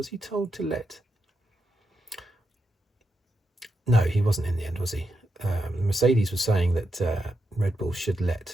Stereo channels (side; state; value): both; normal; correlation 0.85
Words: he told to let? No, he wasn't in the end, was he? Mercedes was saying that Red Bull should